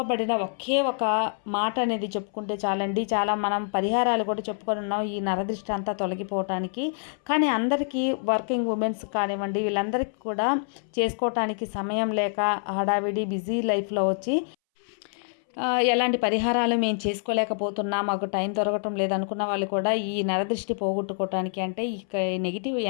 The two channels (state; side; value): silent; right; 61 dB below the other